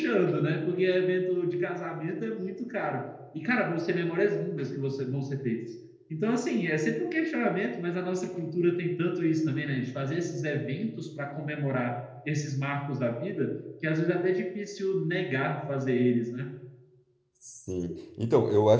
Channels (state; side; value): identical; both; correlation 1.00